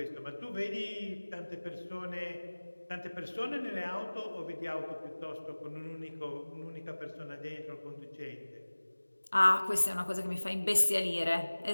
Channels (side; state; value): both; inverted; correlation -1.00